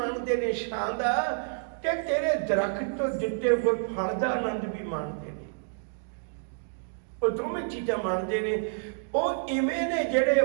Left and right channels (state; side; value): silent; left; digital silence